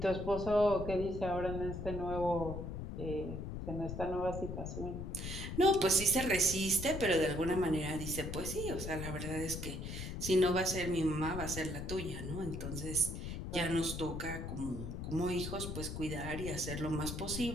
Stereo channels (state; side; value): noise; left; rumble, 6 dB below the sound